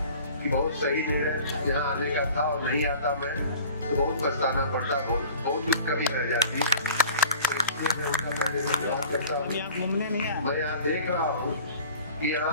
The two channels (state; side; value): inverted; both; correlation -0.46